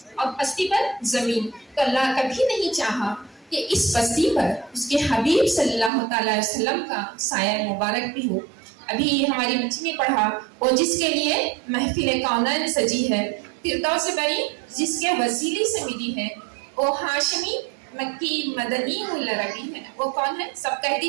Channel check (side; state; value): left; drops out; at 5.9 s